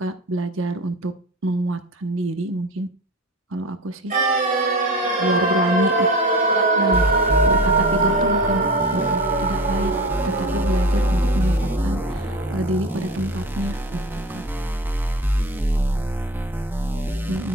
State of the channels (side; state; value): both; normal; correlation 0.30